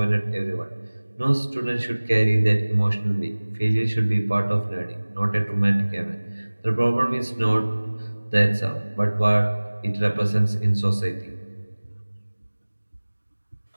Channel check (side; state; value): both; inverted; correlation -1.00